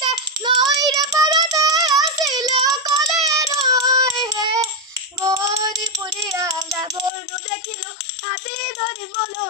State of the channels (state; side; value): drops out; right; at 7.1 s